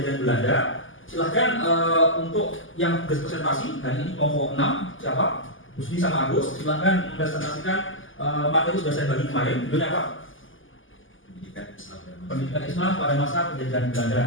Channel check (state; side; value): late; right; 0.58 ms